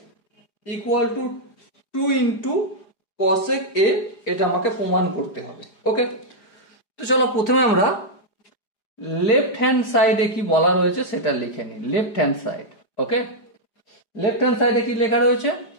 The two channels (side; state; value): right; late; 4.9 ms